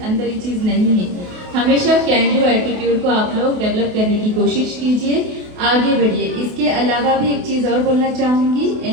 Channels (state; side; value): late; left; 28 ms